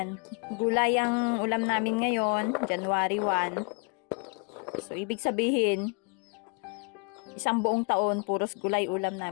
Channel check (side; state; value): right; quieter; 34.6 dB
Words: gulay ang ulam namin ngayon, January 1. So, ibig sabihin, isang buong taon, puros gulay ulam